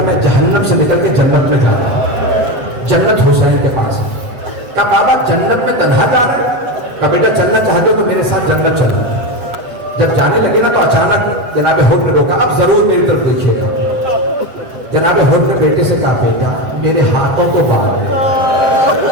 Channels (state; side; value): late; left; 7.8 ms